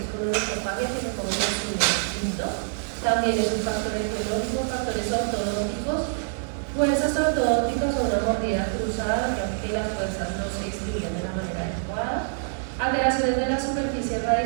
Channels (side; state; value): left; silent; digital silence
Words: con onicofagia que se comen los uñas. ¿Listo? También es un factor etiológico, factores ortodónticos. Fuerzas ortodónticas o una mordida cruzada, ya que las fuerzas no se distribuyen de la manera adecuada. Alteraciones de la superficie